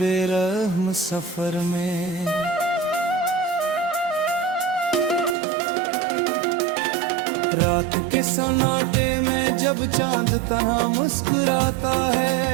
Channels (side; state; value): left; drops out; at 5.4 s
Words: सफर में। रात के सन्नाटे में जब चांद तन्हा मुस्कुराता है,